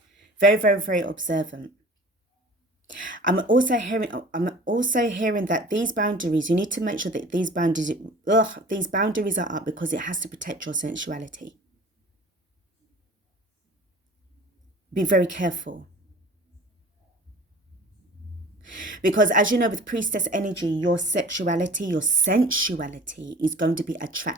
Very, very, very observant. I'm also hearing that these boundaries, you need to make sure that these boundaries are up because it has to protect your sensuality. Be very careful. Because as you know, with priestess energy, your sexuality, your sensuality is going to be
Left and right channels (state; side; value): normal; both; correlation 0.44